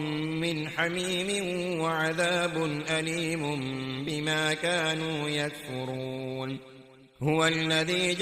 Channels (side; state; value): both; identical; correlation 1.00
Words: حميم وعذاب أليم بما كانوا يكفرون. هو الذي